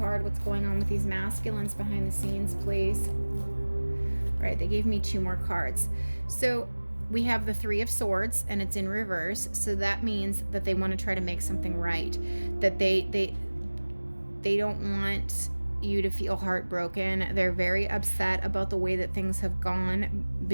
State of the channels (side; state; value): both; inverted; correlation -1.00